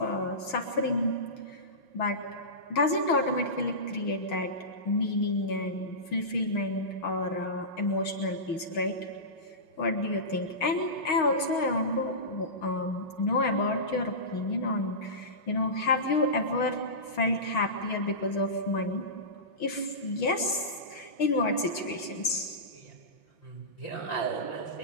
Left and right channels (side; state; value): right; late; 6.3 ms